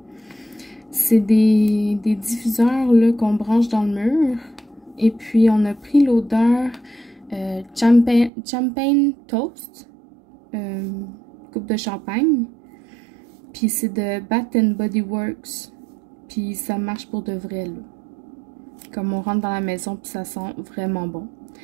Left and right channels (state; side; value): drops out; left; at 8.3 s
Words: C'est des diffuseurs là qu'on branche dans le mur. Et puis, on a pris l'odeur champagne toast, coupe de champagne. Puis, c'est de Bath & Body Works. Puis, ça marche pour de vrai, là. Comme on rentre dans la maison, puis ça sent vraiment bon.